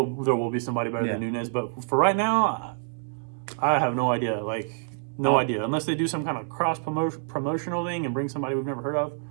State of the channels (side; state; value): left; silent; 60 dB below the other